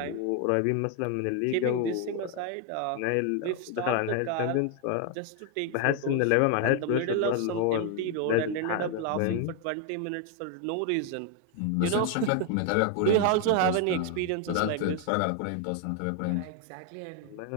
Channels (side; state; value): both; different; correlation 0.00